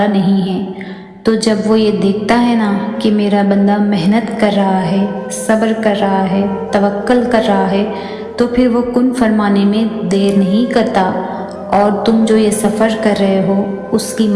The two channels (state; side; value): identical; both; correlation 1.00